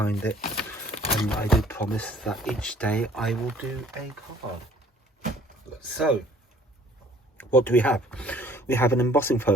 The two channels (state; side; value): normal; both; correlation 0.55